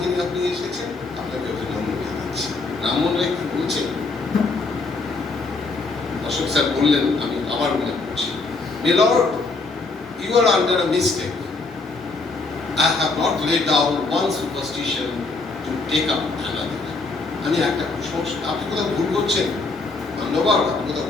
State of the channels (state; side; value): quieter; right; 3.7 dB